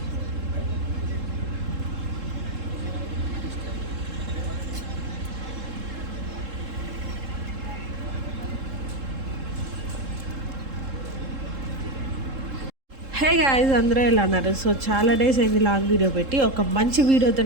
హే గాయ్స్, అందరూ ఎలా అన్నారు? సో చాలా డేస్ అయింది లాంగ్ వీడియో పెట్టి. ఒక మంచి వీడియోతో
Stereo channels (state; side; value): late; left; 3.7 ms